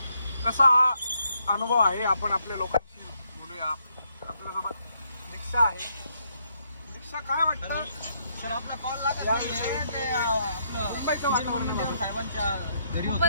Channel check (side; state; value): both; inverted; correlation -0.75